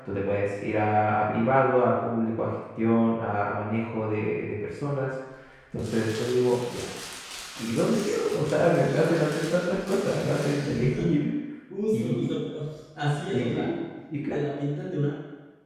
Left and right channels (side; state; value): both; identical; correlation 1.00